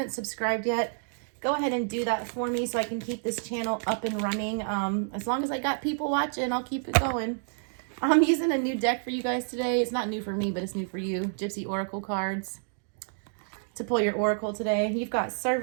subscribed yet, go ahead and do that for me so I can keep this channel up and running. As long as I got people watching, I'll keep it going. I'm using a new deck for you guys today. It's not new for me, but it's new for you. Gypsy Oracle cards to pull your Oracle today. You've got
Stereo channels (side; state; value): left; silent; digital silence